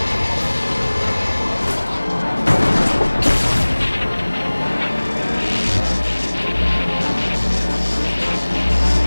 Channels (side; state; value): both; inverted; correlation -1.00